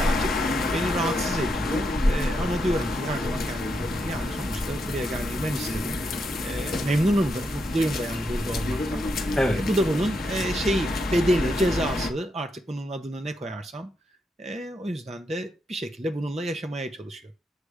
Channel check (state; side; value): normal; both; correlation 0.81